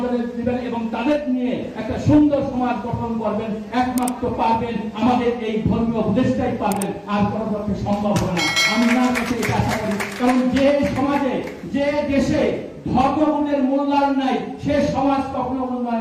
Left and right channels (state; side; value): identical; both; correlation 1.00